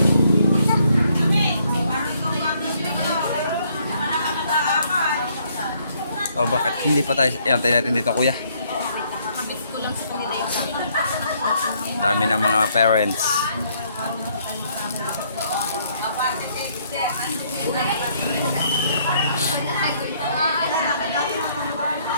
Oh, bakit hindi pa tayo? Antay natin dito, kuya. Dami ng mga parents.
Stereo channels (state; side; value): inverted; both; correlation -0.68